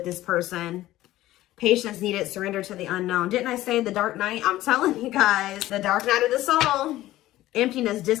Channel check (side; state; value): right; quieter; 15.5 dB